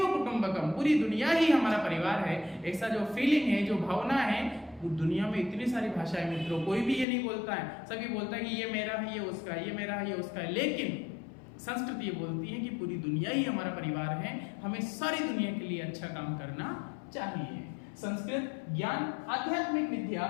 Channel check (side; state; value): right; drops out; at 7.1 s